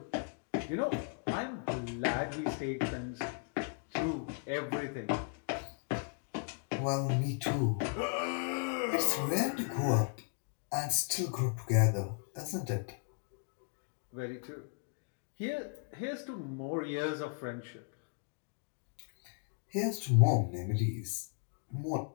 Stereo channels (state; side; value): quieter; right; 39.3 dB